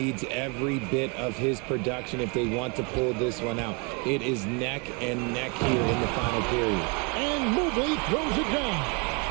every bit of his production if they want to pull this one out. It is neck and neck here in the final period. And Mobley throws it down.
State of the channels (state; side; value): quieter; left; 32.2 dB